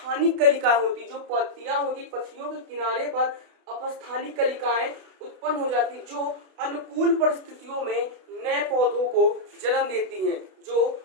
कलिकाएं होती, जो पत्तियां होती, पत्तियों के किनारे पर अपस्थानिक कलिकाएं उत्पन्न हो जाती, जो अनुकूल परिस्थितियों में नए पौधों को जन्म देती हैं, जो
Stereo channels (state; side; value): late; left; 32 ms